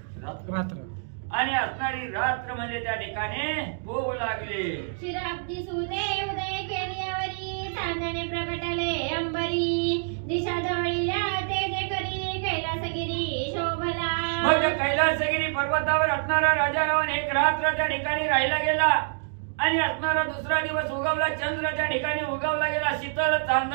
रात्र आणि असणारी रात्र म्हणजे त्या ठिकाणी होऊ लागले। शिराब्दी सुदे उदय केल्यावरी चांदणे प्रगटले अंबरी दिशा जवळील्या तेजे करी कैलासगिरी शोभला। मग कैलासगिरी पर्वतावर असणारा राजा रावण एक रात्र त्या ठिकाणी राहिला गेला आणि असणारा दुसरा दिवस उगवला, चंद्र त्या ठिकाणी उगवला गेला, शीतल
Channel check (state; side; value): silent; left; digital silence